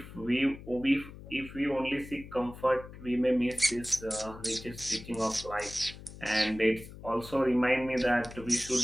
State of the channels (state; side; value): noise; left; hum, 15 dB below the sound